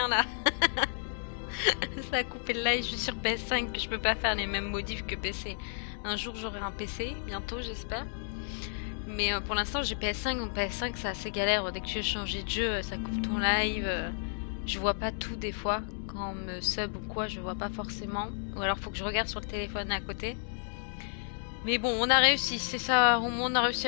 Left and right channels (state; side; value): silent; right; digital silence